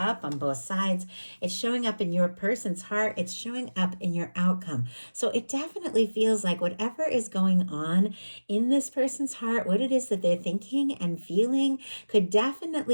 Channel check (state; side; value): inverted; both; correlation -1.00